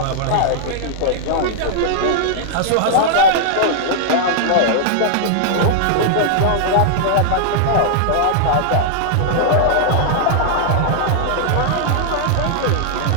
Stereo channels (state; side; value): different; both; correlation -0.01